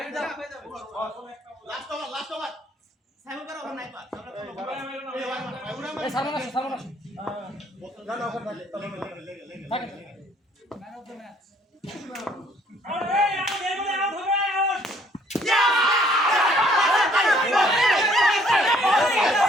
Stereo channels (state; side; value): normal; both; correlation 0.62